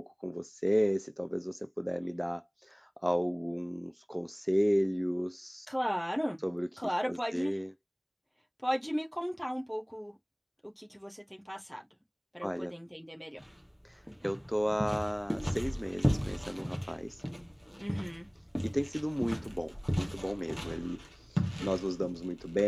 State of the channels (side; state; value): both; identical; correlation 1.00